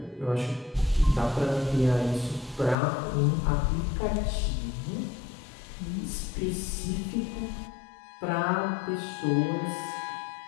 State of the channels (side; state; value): right; drops out; at 2.8 s